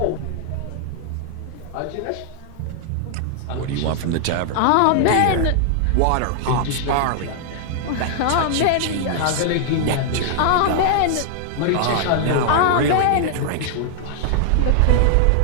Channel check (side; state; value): both; different; correlation -0.01